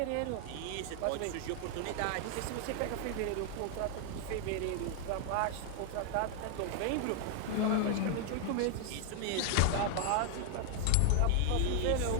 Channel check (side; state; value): both; different; correlation 0.00